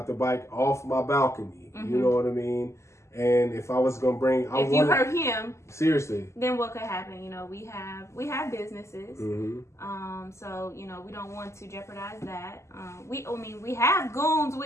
the bike off my balcony. You know what I mean? And if I was gonna bring, you hurt him, seriously, then what could happen? We have businesses, so we don't want to jeopardize that. We have goons. We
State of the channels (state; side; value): late; right; 0.13 ms